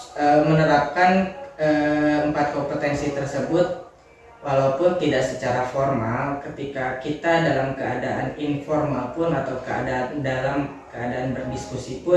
menerapkan 4 kompetensi tersebut walaupun tidak secara formal. Ketika kita dalam keadaan informal pun atau dalam keadaan berdiskusi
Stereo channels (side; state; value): both; identical; correlation 1.00